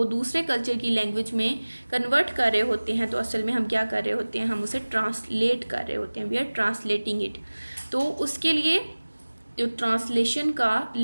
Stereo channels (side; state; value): both; inverted; correlation -1.00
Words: दूसरे कल्चर की लैंग्वेज में कन्वर्ट कर रहे होते हैं तो असल में हम क्या कर रहे होते हैं, हम उसे ट्रांसलेट कर रहे होते हैं, वी आर ट्रांसलेटिंग इट। तो उसके लिए जो ट्रांसलेशन का